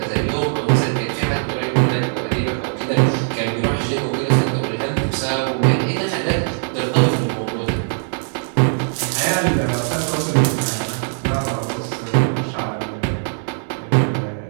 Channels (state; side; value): silent; left; digital silence